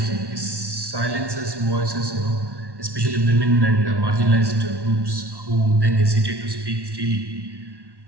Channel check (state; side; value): late; left; 1.1 ms